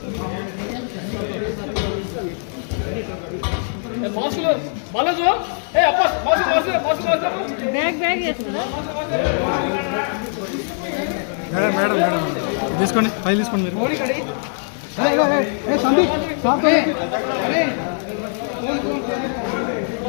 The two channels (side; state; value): right; silent; 62 dB below the other